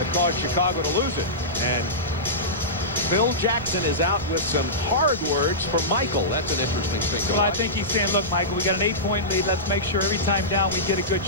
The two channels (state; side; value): normal; both; correlation -0.16